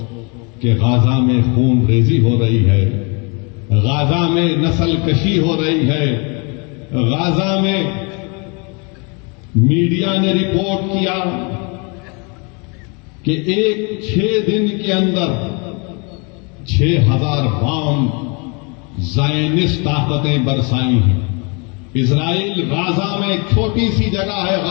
کہ غازہ میں خون ریزی ہو رہی ہے، غازہ میں نسل کشی ہو رہی ہے، غازہ میں میڈیا نے رپورٹ کیا کہ 6 دن کے اندر 6000 بام زائنسٹ طاقتیں برسائی ہیں۔ اسرائیل غازہ میں ایک چھوٹی سی جگہ ہے،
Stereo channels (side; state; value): right; quieter; 32.5 dB